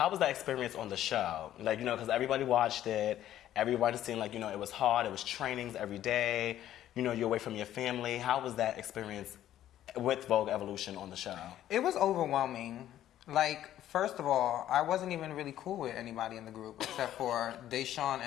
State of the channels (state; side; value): quieter; right; 12.3 dB